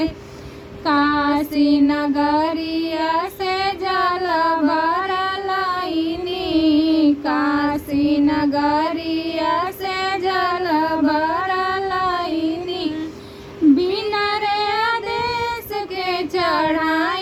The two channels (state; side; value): identical; both; correlation 1.00